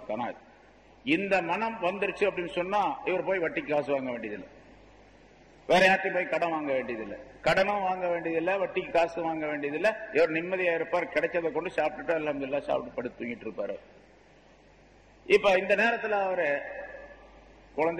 கனாத். இந்த மனம் வந்துருச்சு அப்படின்னு சொன்னா இவர் போய் வட்டிக்கு காசு வாங்க வேண்டியதில்லை, வேற யார்ட்டையும் போய் கடன் வாங்க வேண்டியதில்லை, கடனும் வாங்க வேண்டியதில்லை, வட்டிக்கு காசு வாங்க வேண்டியதில்லை. இவர் நிம்மதியா இருப்பார், கிடைச்சதை கொண்டு சாப்பிட்டுட்டு அல்ஹம்துலில்லாஹ் சாப்பிட்டு படுத்து தூங்கிட்டு இருப்பாரு. இப்ப இந்த நேரத்தில் அவரு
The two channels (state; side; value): identical; both; correlation 1.00